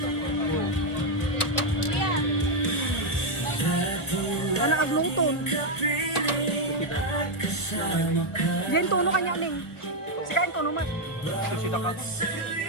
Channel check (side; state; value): right; late; 1.2 ms